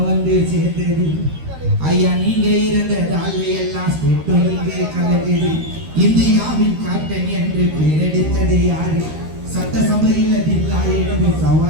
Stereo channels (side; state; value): left; late; 13 ms